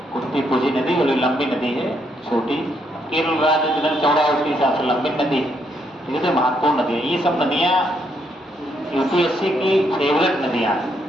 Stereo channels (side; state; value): both; normal; correlation 0.75